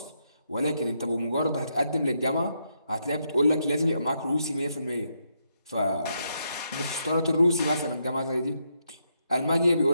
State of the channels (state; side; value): inverted; both; correlation -0.79